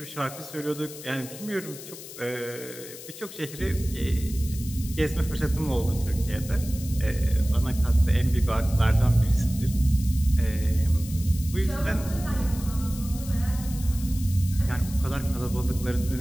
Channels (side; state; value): left; noise; hiss, 14 dB below the sound